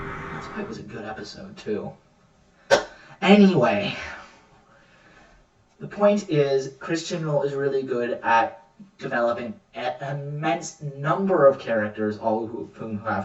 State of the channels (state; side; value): identical; both; correlation 1.00